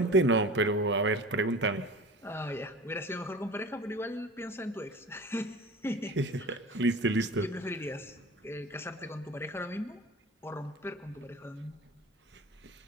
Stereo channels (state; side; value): normal; both; correlation 0.37